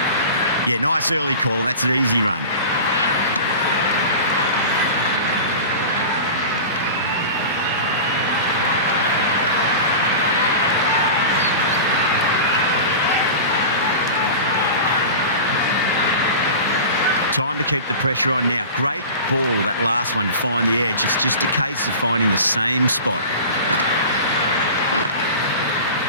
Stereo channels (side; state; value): both; inverted; correlation -0.33